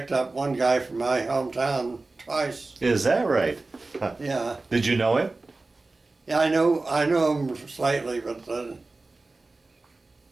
up one guy from my hometown twice. Is that right? Yeah. Did you know him? Yeah, I know him slightly, but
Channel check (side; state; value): left; quieter; 3.4 dB